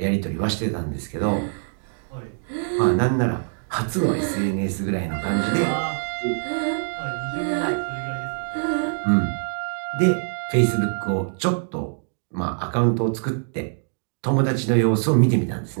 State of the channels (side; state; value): left; silent; digital silence